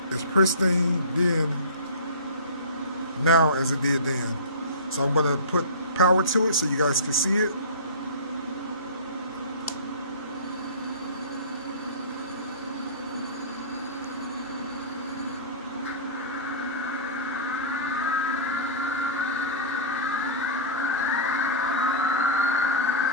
as pristine then now as it did then. So I'm going to put power to it so you guys can see it.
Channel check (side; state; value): both; inverted; correlation -0.30